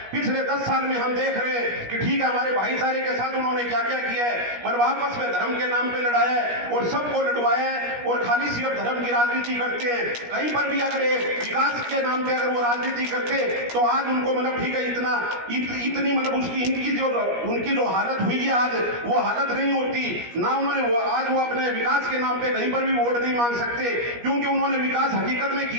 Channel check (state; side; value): late; left; 17 ms